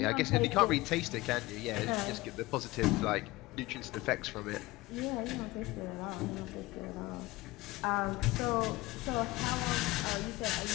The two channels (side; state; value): right; quieter; 20.2 dB